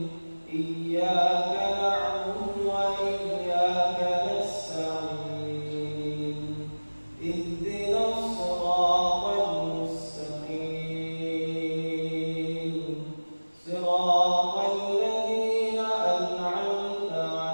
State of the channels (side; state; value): both; inverted; correlation -1.00